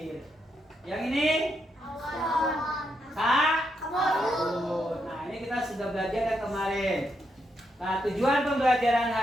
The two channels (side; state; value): both; normal; correlation 0.81